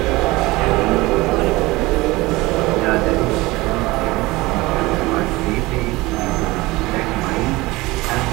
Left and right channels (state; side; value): quieter; left; 20.9 dB